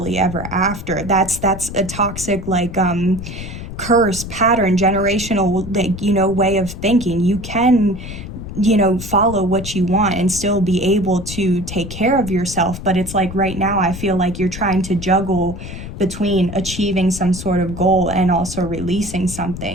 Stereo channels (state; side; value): noise; left; rumble, 10 dB below the sound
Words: ever after. That's a toxic like curse, pattern, generational like, you know, way of thinking. You can, you know, follow what you want and still be able to take care of yourself. But it's like right now I feel like you're trying to juggle between achieving some sort of goal and also releasing